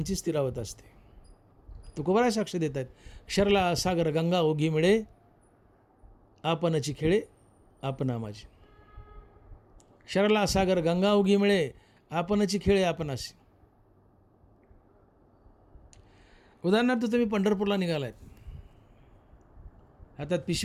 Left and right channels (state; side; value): identical; both; correlation 1.00